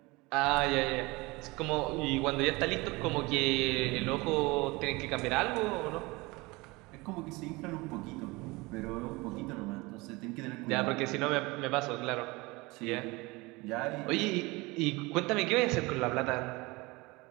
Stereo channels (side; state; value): left; quieter; 23.6 dB